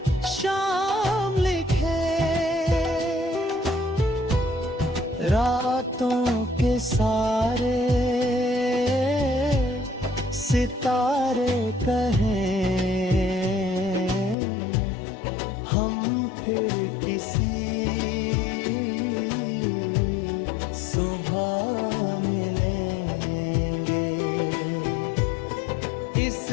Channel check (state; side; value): drops out; right; at 14.4 s